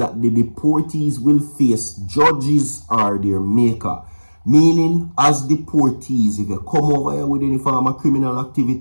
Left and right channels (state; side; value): inverted; both; correlation -1.00